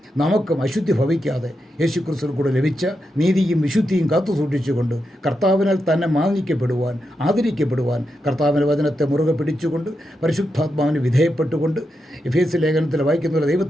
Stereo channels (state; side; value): normal; both; correlation 0.86